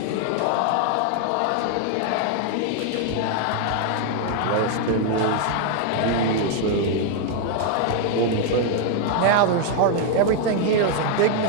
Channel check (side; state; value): both; different; correlation 0.00